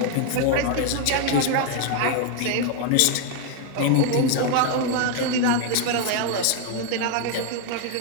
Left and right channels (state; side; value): different; both; correlation 0.00